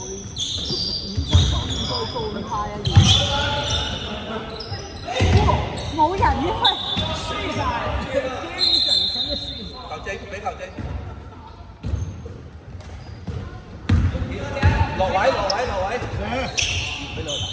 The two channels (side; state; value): both; identical; correlation 1.00